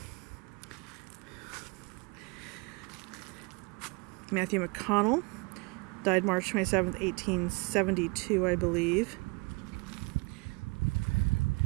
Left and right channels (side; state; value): left; quieter; 29.1 dB